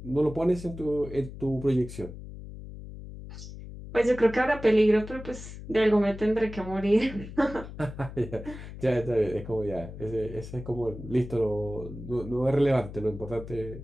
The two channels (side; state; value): left; noise; hum, 12 dB below the sound